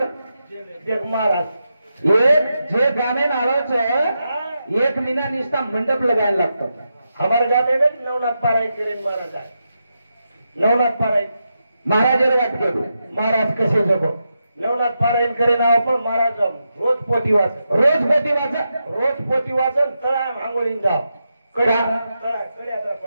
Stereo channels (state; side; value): inverted; both; correlation -0.86